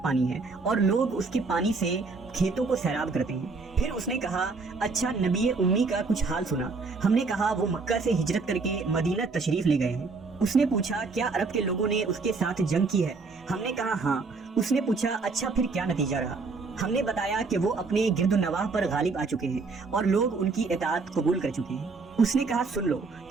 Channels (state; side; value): quieter; left; 4.2 dB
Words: पानी है और लोग उसके पानी से खेतों को सैराब करते हैं। फिर उसने कहा, अच्छा नबी उम्मी का कुछ हाल सुना? हमने कहा, वो मक्का से हिजरत करके मदीना तशरीफ ले गए हैं। उसने पूछा, क्या अरब के लोगों ने उसके साथ जंग की है? हमने कहा, हाँ। उसने पूछा, अच्छा फिर क्या नतीजा रहा? हमने बताया कि वो अपने गिरदुनवाह पर गालिब आ चुके हैं और लोग उनकी इताअत कबूल कर चुके हैं। उसने कहा, सुन लो